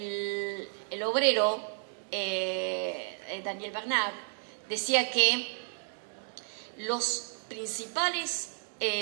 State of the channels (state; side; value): silent; left; 56 dB below the other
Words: obrero Daniel Bernard decía que los principales